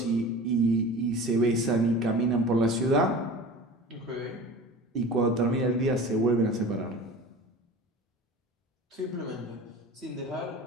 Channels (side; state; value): both; normal; correlation 0.37